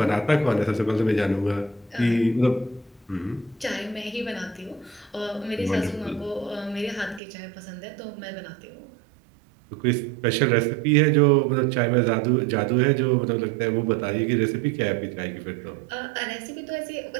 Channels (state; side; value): drops out; left; at 7.2 s